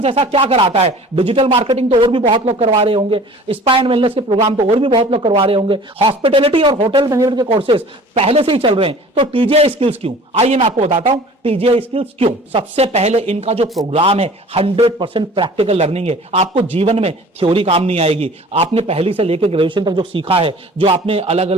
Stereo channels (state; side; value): normal; both; correlation 0.46